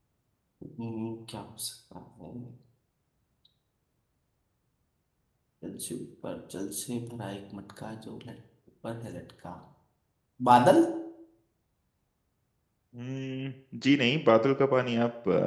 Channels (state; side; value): identical; both; correlation 1.00